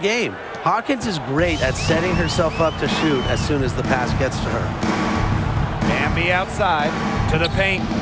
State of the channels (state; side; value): identical; both; correlation 1.00